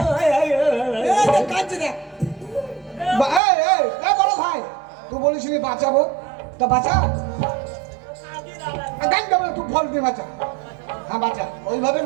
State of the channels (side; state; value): left; drops out; at 3.4 s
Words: কাঁদছে দেখ। বড় ভাই তুই বলিসনি বাঁচাবো তা বাঁচা গান দেবো তুই ফল দিয়ে বাঁচা হ্যাঁ বাঁচা ওইভাবে